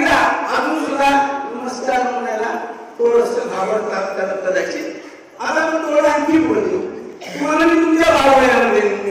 अजून सुद्धा नमस्कार म्हणायला थोडस घाबरतात कदाचित. आता आपण थोडं आणखी पुढे देऊ. तुम्हाला मी तुमच्या भावयामध्ये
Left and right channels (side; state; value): both; identical; correlation 1.00